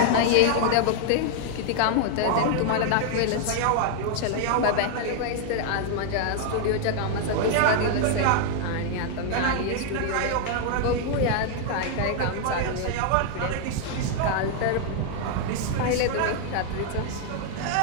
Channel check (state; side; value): different; both; correlation 0.00